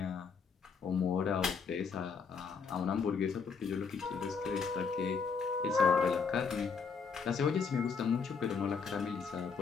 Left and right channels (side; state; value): right; quieter; 5.6 dB